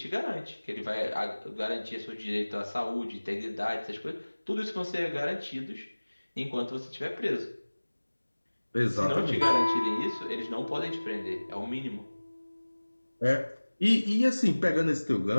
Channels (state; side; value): inverted; both; correlation -1.00